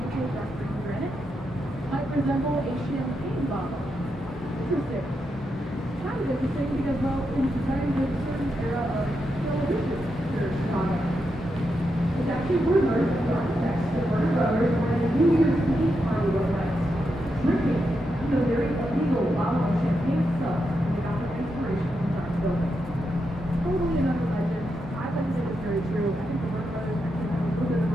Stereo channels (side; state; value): both; normal; correlation 0.85